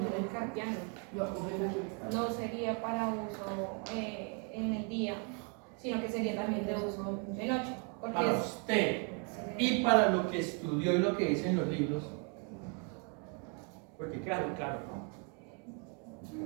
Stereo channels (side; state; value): left; quieter; 37.6 dB